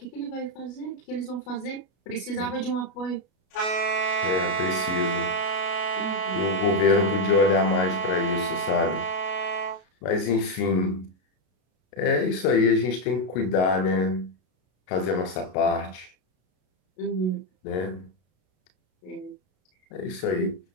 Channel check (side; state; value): right; late; 33 ms